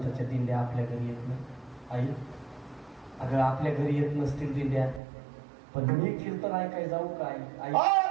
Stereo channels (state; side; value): drops out; left; at 5.0 s